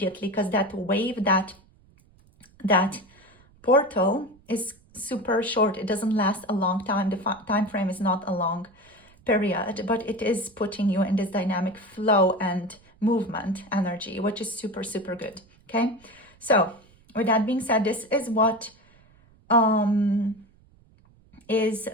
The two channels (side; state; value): right; noise; rumble, 29 dB below the sound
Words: because that wave, that portal is super short. It doesn't last a long time. The time frame is not a long period, but it is putting you in this dynamic flow and movement energy, which is super, super good. Okay. So with that being said, this is what is